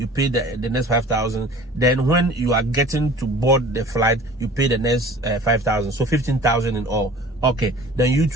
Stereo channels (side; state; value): both; normal; correlation 0.45